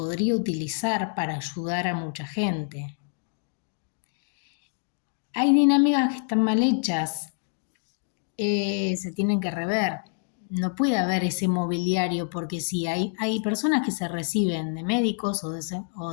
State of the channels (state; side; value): silent; right; 60 dB below the other